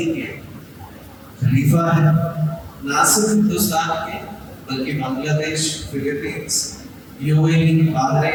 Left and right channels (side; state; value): both; identical; correlation 1.00